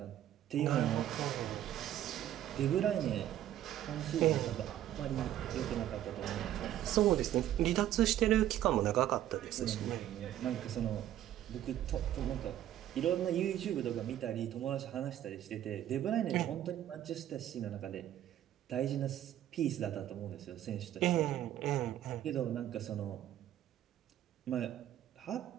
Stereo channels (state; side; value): quieter; left; 12.1 dB